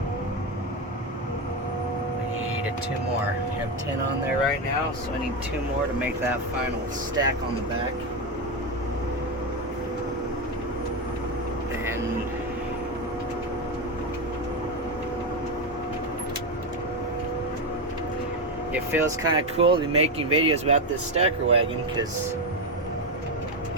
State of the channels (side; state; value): both; normal; correlation 0.11